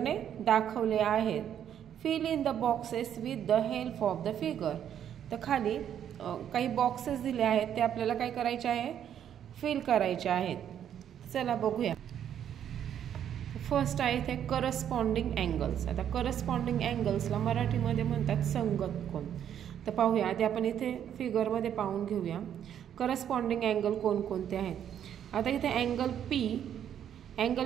दाखवले आहेत. Fill in the boxes with the help of the figure. तर खाली काही बॉक्सेस दिले आहेत ते आपल्याला काय करायचे आहे फिल करायचे आहेत. चला बघूया. फर्स्ट आहे इथे करस्पॉन्डिंग अँगल्स. आता करस्पॉन्डिंग अँगल्सला मराठीमध्ये म्हणतात संगत कोन. तर पाहूया आधी आपण इथे फिगरमध्ये पाहून घेऊया करस्पॉन्डिंग अँगल कोणकोणते आहेत. आता इथे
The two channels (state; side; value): quieter; left; 9.6 dB